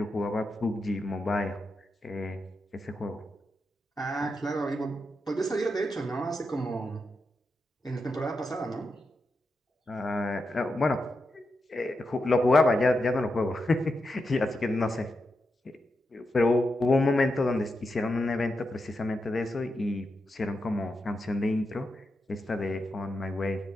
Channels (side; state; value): both; normal; correlation 0.87